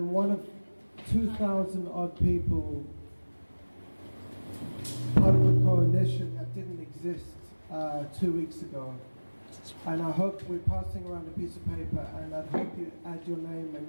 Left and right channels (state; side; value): inverted; both; correlation -1.00